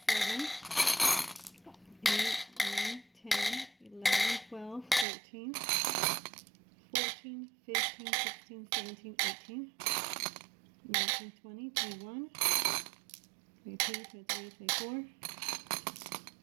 7, 8, 9, 10, 11, 12, 13, 14, 15, 16, 17, 18, 19, 20, 21, 22, 23, 24,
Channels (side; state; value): left; drops out; at 5.1 s